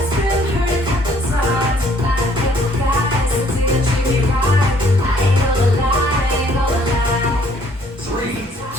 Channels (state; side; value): normal; both; correlation 0.62